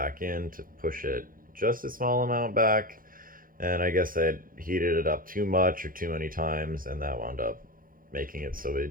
in to push it just a small amount back. And I guess I had heated it up too much or too many times, and that wound up making it so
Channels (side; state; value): left; late; 0.41 ms